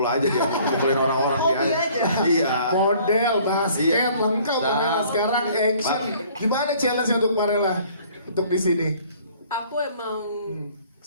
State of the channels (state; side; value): inverted; both; correlation -0.56